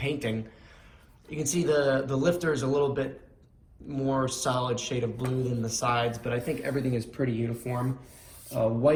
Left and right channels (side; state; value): both; identical; correlation 1.00